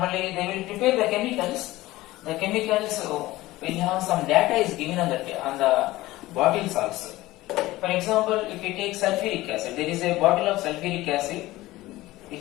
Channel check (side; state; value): right; quieter; 17.8 dB